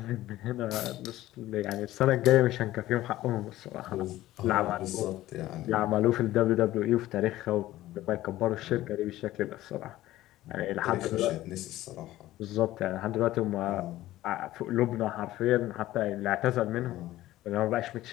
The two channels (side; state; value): right; quieter; 15.5 dB